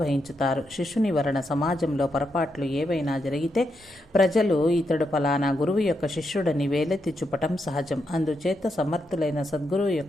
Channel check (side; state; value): both; normal; correlation 0.82